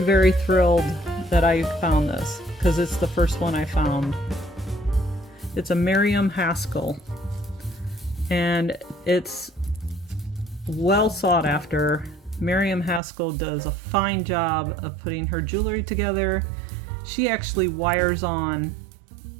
thrilled that I found this because it's the first one I found. It's a Miriam Haskell, and it's well sought after. Miriam Haskell does a fine job of putting her jewelry together. She actually wires on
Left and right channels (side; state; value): left; drops out; at 13.0 s